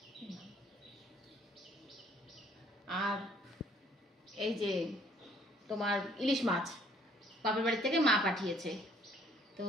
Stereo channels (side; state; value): both; normal; correlation 0.61